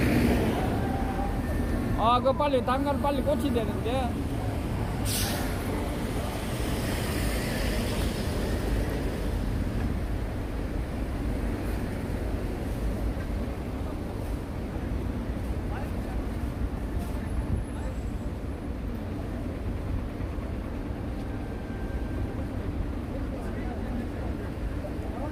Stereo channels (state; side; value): identical; both; correlation 1.00